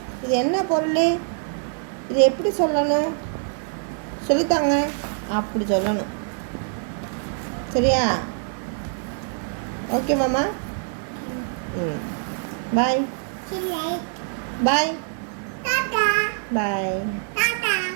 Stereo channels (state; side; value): silent; left; 62 dB below the other